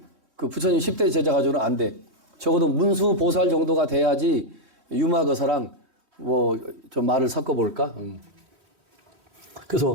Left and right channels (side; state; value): left; late; 3.4 ms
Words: 그 부처님 10대 제자 가지고는 안 돼. 적어도 문수보살 정도가 돼야지 유마거사랑 뭐 좀 말을 섞어볼까?